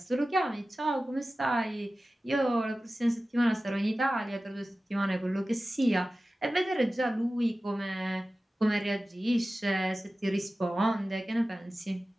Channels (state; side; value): normal; both; correlation 0.95